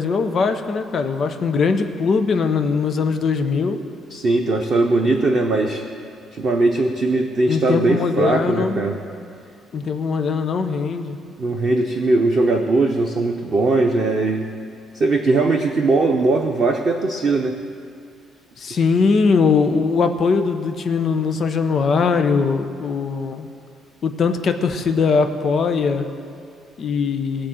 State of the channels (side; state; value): both; normal; correlation 0.74